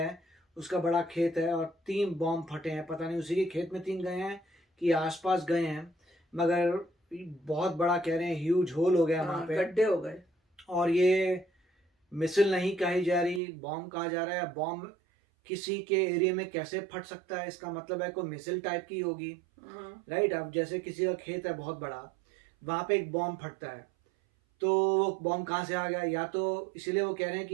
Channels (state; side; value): drops out; left; at 13.4 s